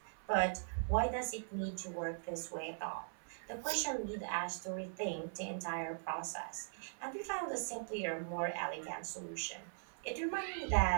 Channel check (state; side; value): silent; left; 51 dB below the other